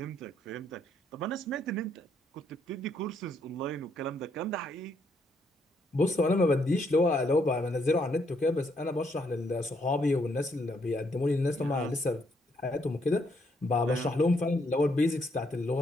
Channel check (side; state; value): both; normal; correlation 0.73